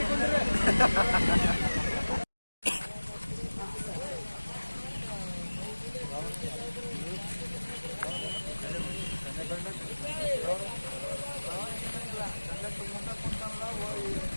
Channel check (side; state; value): both; inverted; correlation -1.00